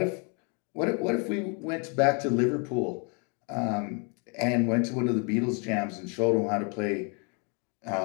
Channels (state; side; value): quieter; right; 35.1 dB